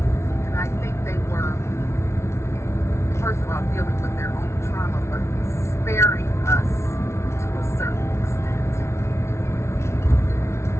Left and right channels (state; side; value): late; right; 0.13 ms